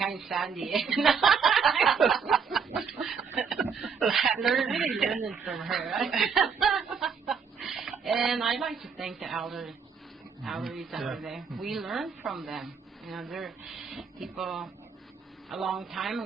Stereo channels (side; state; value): left; quieter; 6.1 dB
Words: Sandy. I'm really learning from her. And I'd like to thank the elders that were there. We learned from them. You know, they're people a long time